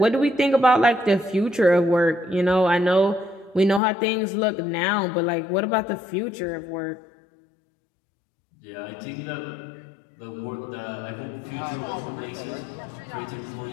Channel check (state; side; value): drops out; right; at 3.8 s